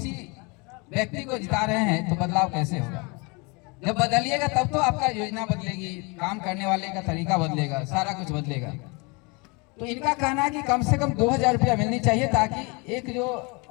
व्यक्ति को जिता रहे हैं तो बदलाव कैसे होगा? जब बदलिएगा तब तो आपका योजना बदलेगी, काम करने वाले का तरीका बदलेगा, सारा कुछ बदलेगा। तो इनका कहना है कि कम से कम 2000 रुपया मिलनी चाहिए, ताकि एक जो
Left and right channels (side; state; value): right; quieter; 29.1 dB